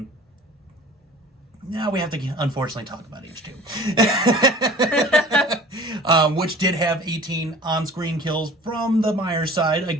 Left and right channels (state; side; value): normal; both; correlation 0.45